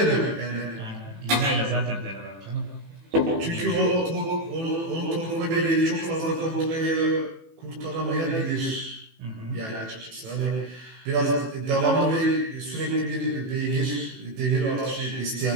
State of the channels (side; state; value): left; late; 18 ms